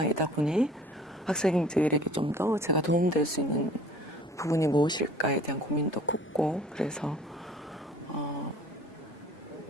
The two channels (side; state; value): both; normal; correlation 0.50